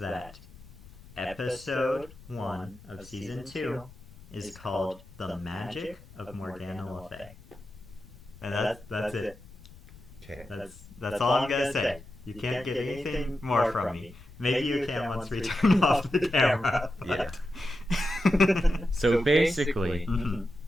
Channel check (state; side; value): noise; left; rumble, 20 dB below the sound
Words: episode 1 of season 2 is called The Magic of Morgana Le Fay. And that's it. Okay. That's all I'm gonna say. You can't get anything more from me. Maybe you can once we turn off the camera. Yeah. So basically,